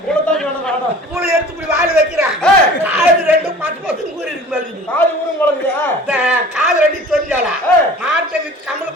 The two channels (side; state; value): both; normal; correlation 0.44